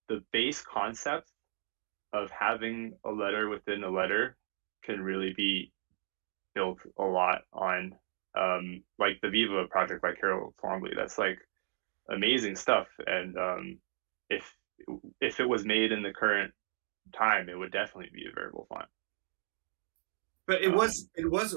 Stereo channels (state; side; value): silent; left; digital silence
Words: base concept of having a letter within a letter can really be built a lot on, like the Viva project by Carol Twombly. That's like amazing stuff, and if it was made in the current time, it would definitely be a variable font. But it was